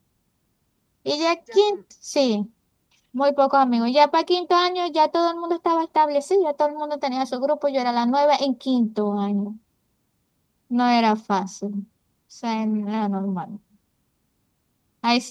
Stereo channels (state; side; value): identical; both; correlation 1.00